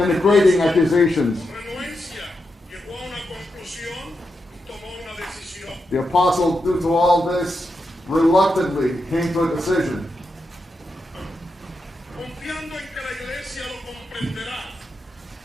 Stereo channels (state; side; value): normal; both; correlation 0.86